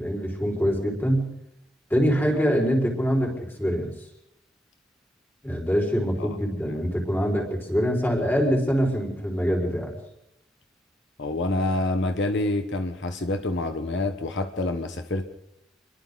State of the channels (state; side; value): normal; both; correlation 0.78